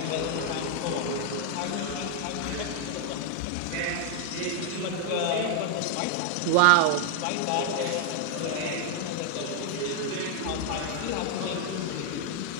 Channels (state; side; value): different; both; correlation 0.00